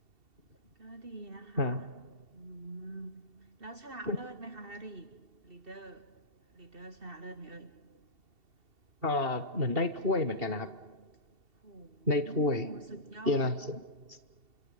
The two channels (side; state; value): left; late; 2.7 ms